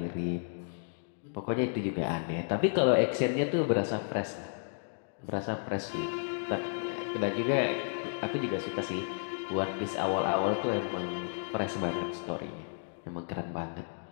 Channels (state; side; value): silent; right; digital silence